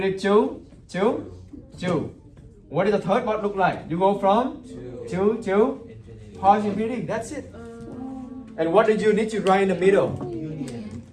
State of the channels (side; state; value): both; identical; correlation 1.00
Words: 2 to 2. What does the third part look like? You go from 2 to positive infinity. That's it. And what did you need to write in the middle?